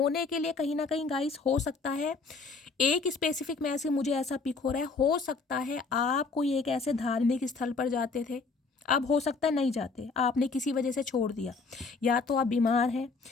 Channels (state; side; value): quieter; right; 4.3 dB